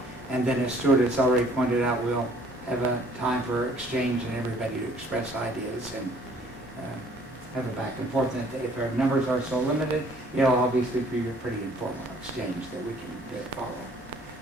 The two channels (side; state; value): both; normal; correlation 0.58